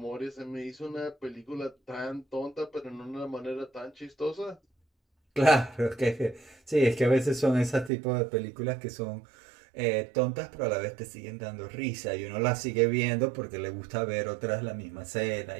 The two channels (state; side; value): drops out; left; at 7.9 s